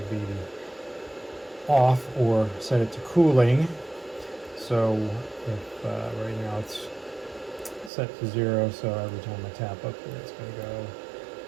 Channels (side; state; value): left; drops out; at 7.9 s